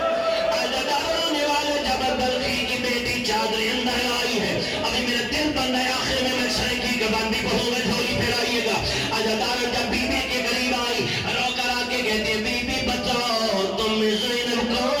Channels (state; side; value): identical; both; correlation 1.00